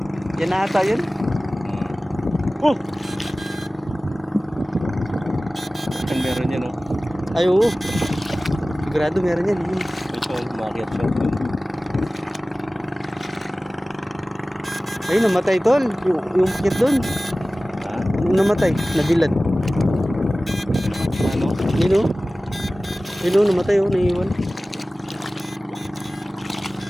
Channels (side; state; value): both; normal; correlation 0.97